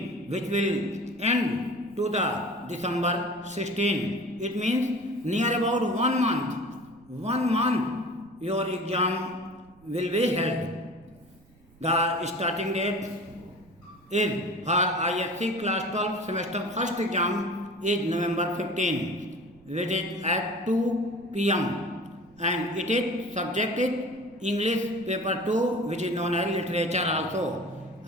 which will end to the December 16. It means near about 1 month. 1 month your exam will be held. The starting date is for ISC class 12 semester first exam is November 15, which is at 2 p.m. and it is subjected English paper 2, which is known as literature also.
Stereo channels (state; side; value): noise; right; rumble, 28 dB below the sound